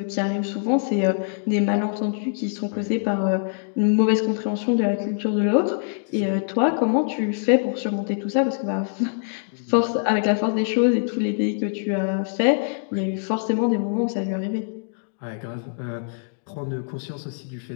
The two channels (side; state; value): right; silent; digital silence